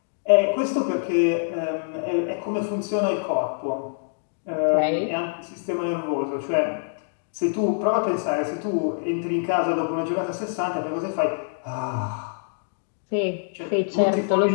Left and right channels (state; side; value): silent; right; digital silence